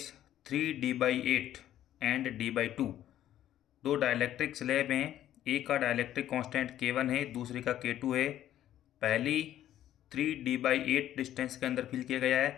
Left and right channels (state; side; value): quieter; right; 12.1 dB